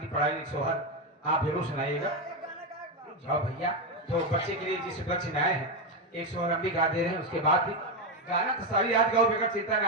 पढ़ाई सोहर आप जरूर सुनाइएगा जाओ भैया तो बच्चे के लिए जिस बच्चे में आए हैं एक सोहर हम भी गा दे रहे हैं उसके बाद भी गाना तो सारी रात गाओ बेकार चिंता ना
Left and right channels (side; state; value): both; normal; correlation 0.09